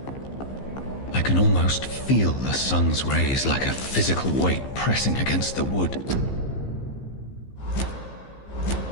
I can almost feel the sun's rays like a physical weight pressing against the wood.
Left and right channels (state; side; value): late; right; 15 ms